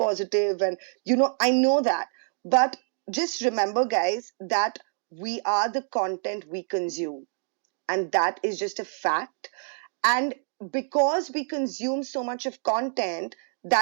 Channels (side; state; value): left; silent; 60 dB below the other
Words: and I know that, but just remember guys that we are the content we consume, and that is just a fact. And because we consume so much of content